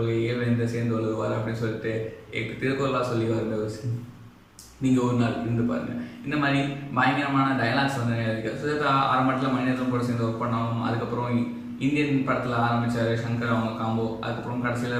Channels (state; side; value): identical; both; correlation 1.00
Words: வேந்த சேர்ந்து வருவார் அப்படின்னு சொல்லிட்டு திருக்குறளாக சொல்லி வர நீங்கள் ஒரு நாள் இருந்து பாருங்கள். இந்த மாதிரி பயங்கரமான டைலாக்ஸ் வந்து இருக்குது. சுஜாதா ஆரம்பத்தில் மனிதன் கூட சேர்ந்து ஒர்க் பண்ணாலும் அதுக்கப்புறம் இந்தியன் படத்தில் ஆரம்பித்தார் சங்கர் அவங்க காம்போ. அதுக்கப்புறம்